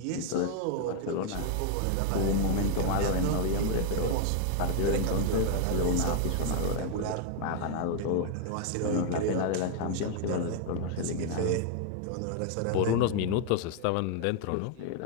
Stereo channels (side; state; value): both; different; correlation 0.00